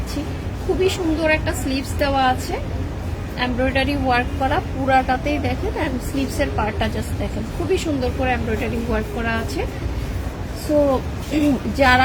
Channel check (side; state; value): both; identical; correlation 1.00